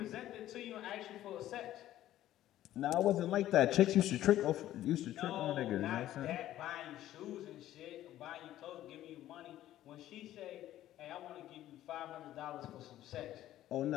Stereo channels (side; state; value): right; quieter; 13.4 dB